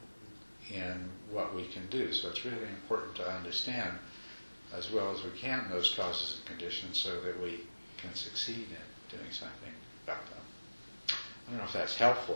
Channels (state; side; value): inverted; both; correlation -1.00